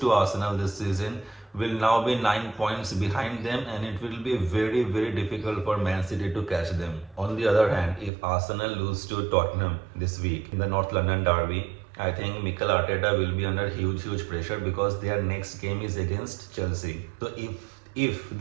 to Arsenal this season, will now be 9 points behind them and it will be very difficult for Man City to catch them. On the other hand, if Arsenal lose to Tottenham this week in the North London derby, I think Mikel Arteta will be under huge pressure because their next game is against Chelsea. So if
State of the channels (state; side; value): drops out; left; at 8.1 s